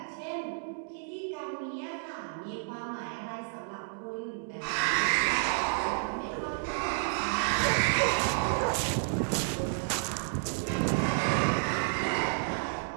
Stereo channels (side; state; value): left; silent; digital silence